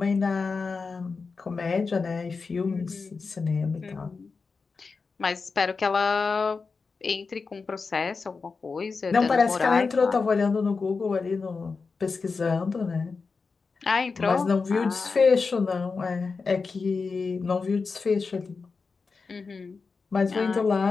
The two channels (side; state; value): right; quieter; 4.6 dB